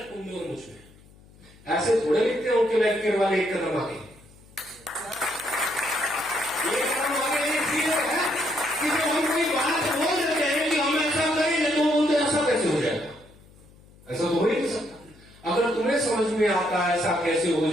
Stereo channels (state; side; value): noise; left; hum, 25 dB below the sound